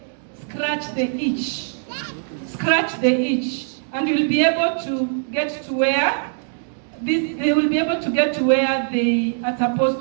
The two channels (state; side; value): silent; left; digital silence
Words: scratch the itch. Scratch the itch. And you'll be able to get to where they will be able to get to where they are